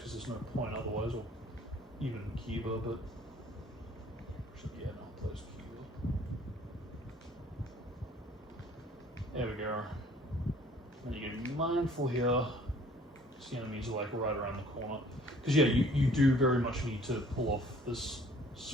there's no point otherwise, or even Kiba, but... Actually, yeah, no, it plays Kiba. There we go. And you gotta be mindful here, because the enemies are like right around the corner. Because yeah, you do very much need to pull off this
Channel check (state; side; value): normal; both; correlation 0.55